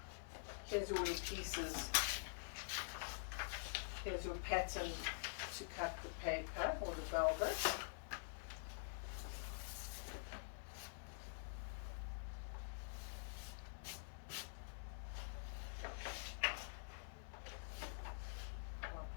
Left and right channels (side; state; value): right; silent; digital silence